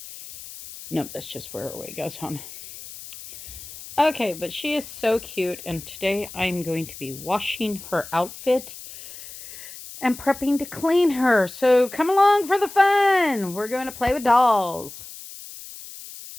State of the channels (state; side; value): noise; left; hiss, 14 dB below the sound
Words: Nope, that's just where her weight goes on. Okay, but she is so cute, and today I'm going to be washing her outfit and prepping to clean her. So come along for the fun. We're going to play with dolls.